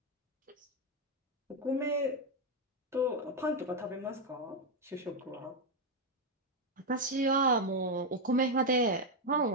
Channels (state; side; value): normal; both; correlation 0.04